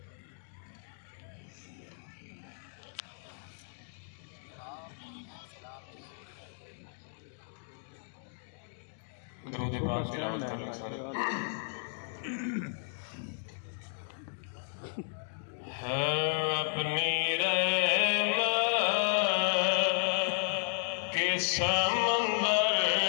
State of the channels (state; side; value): silent; right; digital silence